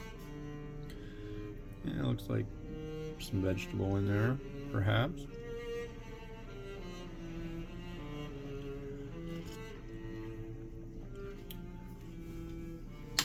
Yeah, it looks like some vegetable in there, perhaps.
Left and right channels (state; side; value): identical; both; correlation 1.00